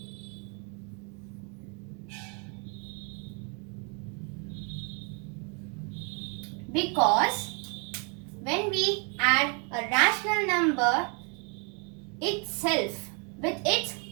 Because when we add a rational number itself with its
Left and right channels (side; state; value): left; quieter; 36.5 dB